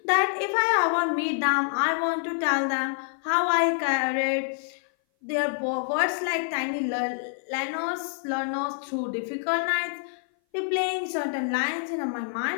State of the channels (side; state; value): right; silent; 57 dB below the other